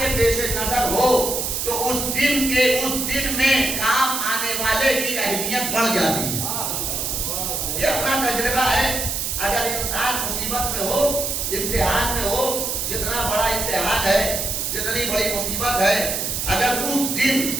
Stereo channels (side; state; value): right; noise; hiss, 1 dB below the sound